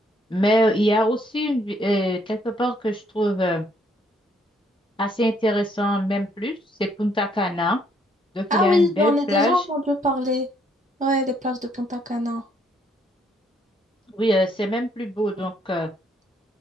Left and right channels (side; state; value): both; normal; correlation 0.68